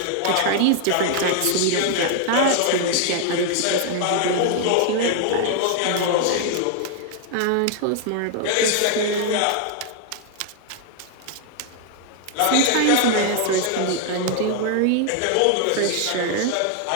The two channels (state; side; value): different; both; correlation 0.00